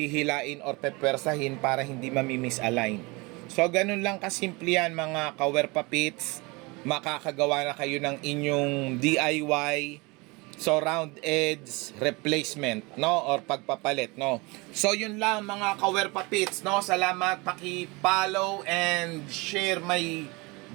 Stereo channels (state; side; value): quieter; left; 26.1 dB